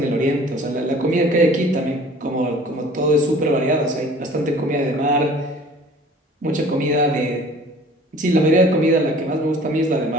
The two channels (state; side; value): normal; both; correlation 0.49